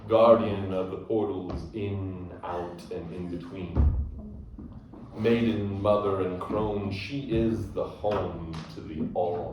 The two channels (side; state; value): both; identical; correlation 1.00